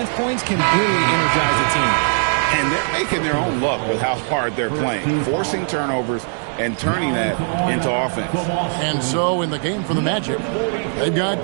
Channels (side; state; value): left; silent; 62 dB below the other